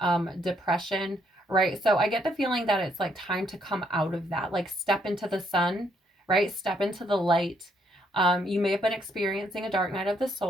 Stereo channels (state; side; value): normal; both; correlation 0.72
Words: depression, right? So I get the feeling that it's like time to come out of that, like step into the sun, right? Step into the light. You may have been experiencing a dark night of the